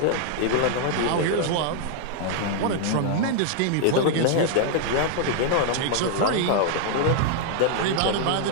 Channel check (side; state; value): both; different; correlation 0.00